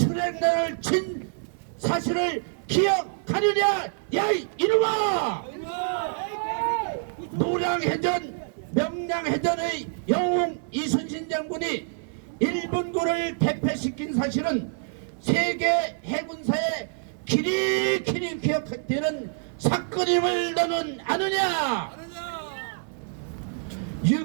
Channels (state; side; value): silent; left; 61 dB below the other